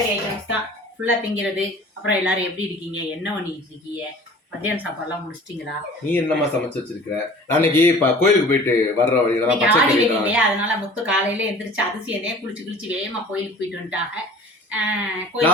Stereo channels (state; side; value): normal; both; correlation 0.45